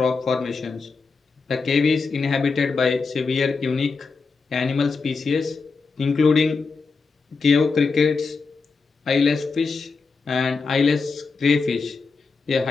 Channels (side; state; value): right; quieter; 4.5 dB